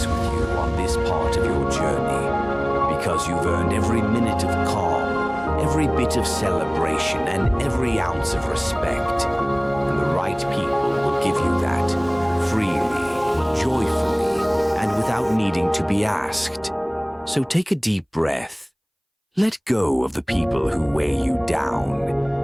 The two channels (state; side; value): identical; both; correlation 1.00